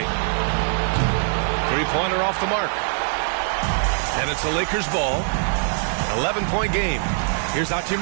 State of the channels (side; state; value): left; silent; 64 dB below the other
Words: Three-pointer off the mark. And it's a Lakers ball. 11-point game. Here's